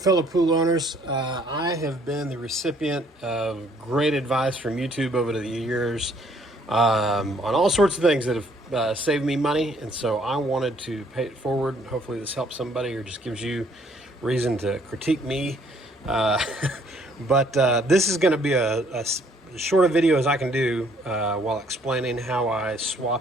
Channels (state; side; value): normal; both; correlation 0.63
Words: pool owners. I have been the recipient of great advice from YouTube over the years on all sorts of things that have saved me money, and so I wanted to pay it forward. Hopefully, this helps somebody or just gives you reason to critique me. Uh, but this is going to be as short a video as I can do while explaining how I